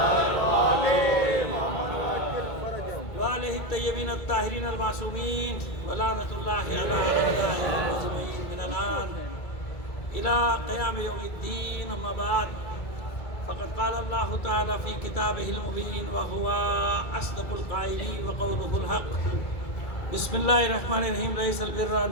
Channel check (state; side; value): late; right; 2.3 ms